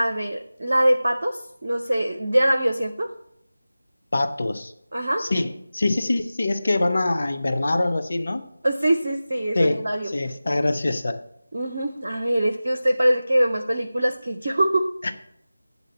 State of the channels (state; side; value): inverted; both; correlation -0.96